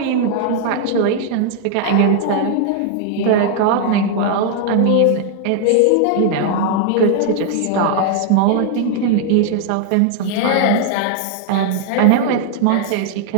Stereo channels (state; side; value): different; both; correlation 0.00